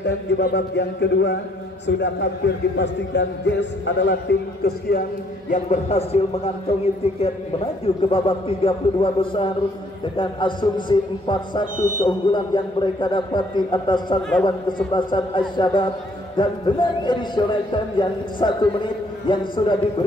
di babak yang kedua. Sudah hampir dipastikan Jazz adalah tim kesekian yang berhasil mengantongi tiket menuju ke babak 32 besar dengan asumsi 4-1 keunggulan yang mereka dapati atas lawan kesebelasan Al-Shabab dan dengan additional time yang 1 menit yang sudah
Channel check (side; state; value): both; normal; correlation 0.65